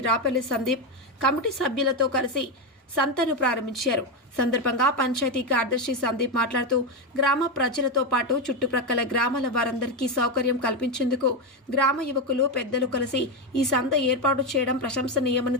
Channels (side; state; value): both; normal; correlation 0.09